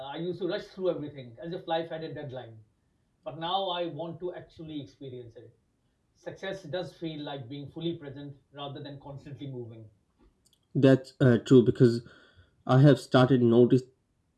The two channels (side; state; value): both; identical; correlation 1.00